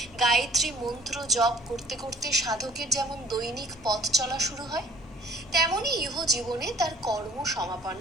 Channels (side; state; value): both; normal; correlation 0.53